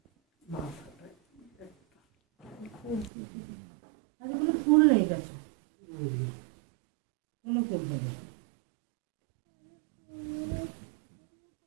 আজ কোনো ফুল নেই কাছে, কোনো ফুল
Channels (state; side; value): drops out; left; at 3.1 s